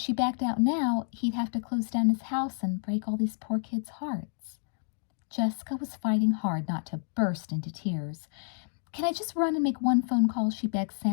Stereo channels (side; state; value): right; silent; digital silence